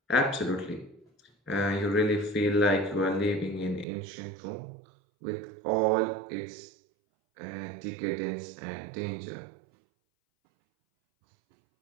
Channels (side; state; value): left; drops out; at 3.9 s